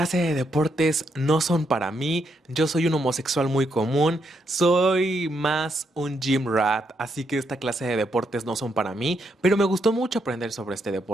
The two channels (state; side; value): normal; both; correlation 0.78